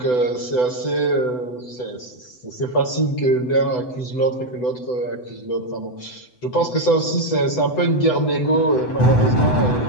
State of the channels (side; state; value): right; late; 8.0 ms